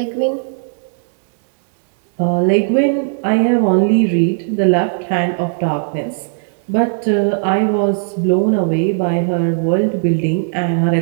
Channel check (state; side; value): silent; left; digital silence